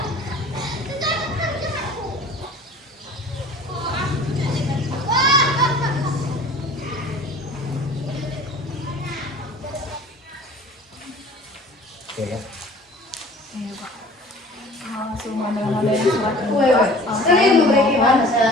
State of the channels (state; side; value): normal; both; correlation 0.46